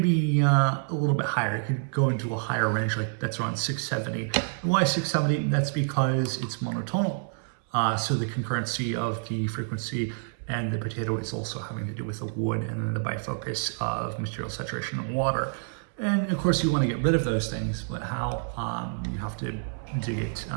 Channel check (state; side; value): silent; left; 60 dB below the other